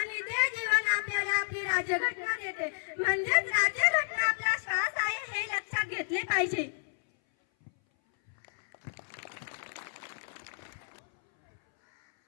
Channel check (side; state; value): right; silent; 57 dB below the other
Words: ते जीवन आपल्याला आपली राज्यघटना देते, म्हणजेच राज्यघटना आपला श्वास आहे हे लक्षात घेतले पाहिजे।